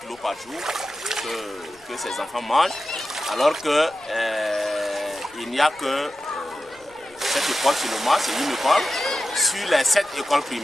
kg par jour que ces enfants mangent. Alors que il n'y a que cette école seulement, c'est une école, sur les 7 écoles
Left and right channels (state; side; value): noise; left; rumble, 30 dB below the sound